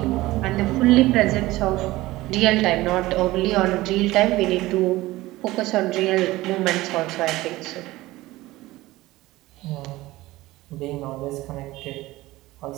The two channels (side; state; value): left; quieter; 18.2 dB